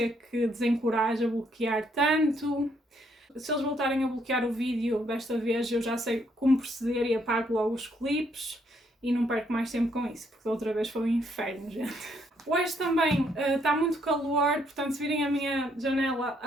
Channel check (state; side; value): normal; both; correlation 0.71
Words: que desencoraje a bloquear tanto. Se eles voltarem a bloquear o vídeo desta vez, eu já sei como proceder e apago logo os clipes e não perco mais tempo com isso, porque da outra vez foi um inferno, gente. Hoje também está muito calor, portanto se virem a minha janela